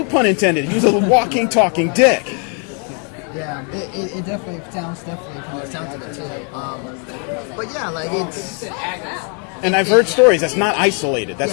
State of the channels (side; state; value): right; quieter; 39.3 dB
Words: pun intended. He was a walking, talking dick. Yeah, it definitely sounds from the sounds of it too. But yeah, like it's. And I've heard stories. That's not isolated.